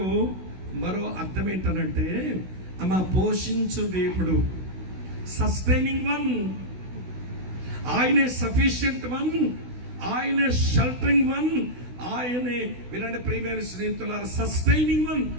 మరో అర్థం ఏంటనంటే, అమ్మ పోషించు దేవుడు, సస్టైనింగ్ వన్. ఆయనే సఫిషియంట్ వన్, ఆయనే షెల్టరింగ్ వన్, ఆయనే వినండి ప్రియమైన స్నేహితులారా, సస్టైనింగ్ వన్,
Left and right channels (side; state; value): left; late; 16 ms